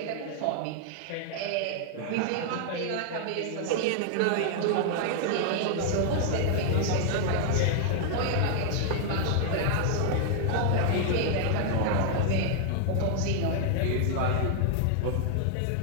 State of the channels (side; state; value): both; different; correlation 0.00